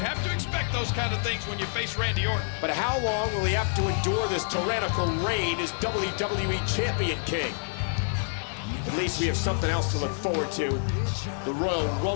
to expect those kind of things when you face Randy Orton. But how long will he have to endure this tyrannical reign as WWE Champion King? At least we have something else to look forward to. The Royal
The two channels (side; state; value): right; silent; digital silence